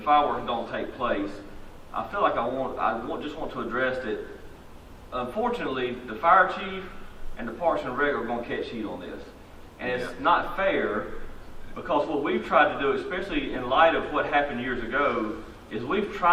don't take place, I feel like just want to address that. Unfortunately, the fire chief and the Parks and Rec are going to catch heat on this, and it's not fair, because what we've tried to do, especially in light of what happened years ago, is we've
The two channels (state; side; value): identical; both; correlation 1.00